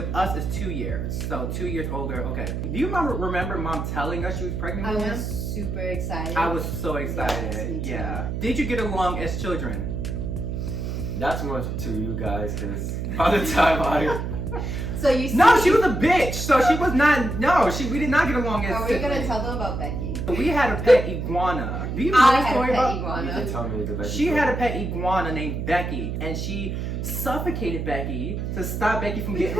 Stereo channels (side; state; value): right; noise; hum, 3 dB below the sound